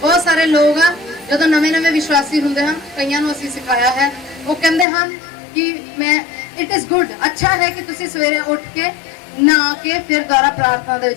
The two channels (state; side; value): drops out; right; at 4.9 s